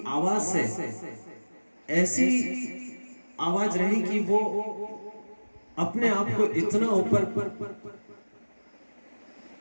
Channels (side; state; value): both; inverted; correlation -1.00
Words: आवाज से ऐसी आवाज रही कि वो अपने आप को